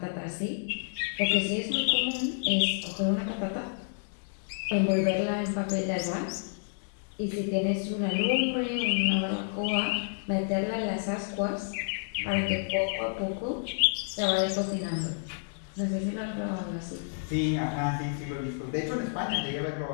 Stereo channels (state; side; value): silent; right; digital silence